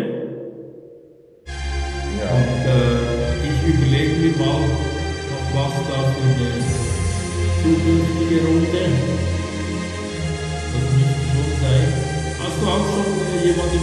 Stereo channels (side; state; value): both; identical; correlation 1.00